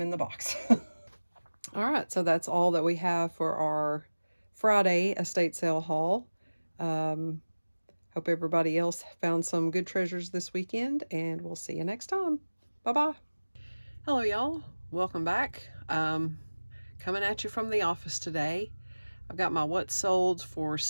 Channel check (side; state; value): both; inverted; correlation -1.00